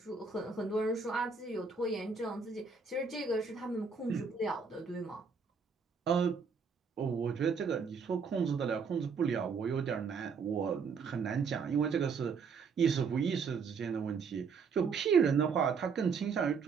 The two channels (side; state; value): left; quieter; 5.4 dB